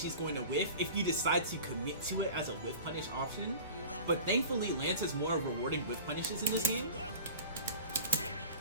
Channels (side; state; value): both; inverted; correlation -0.38